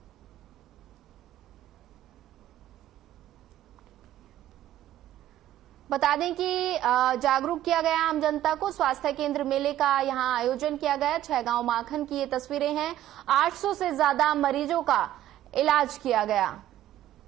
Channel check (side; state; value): left; quieter; 12.9 dB